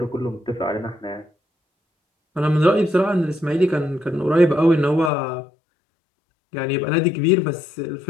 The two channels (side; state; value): right; drops out; at 5.1 s